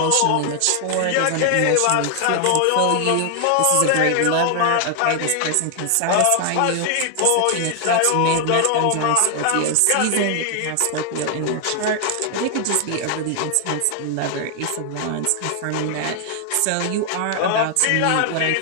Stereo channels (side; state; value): both; different; correlation 0.00